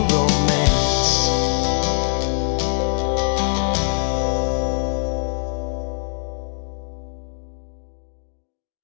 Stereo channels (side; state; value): right; silent; digital silence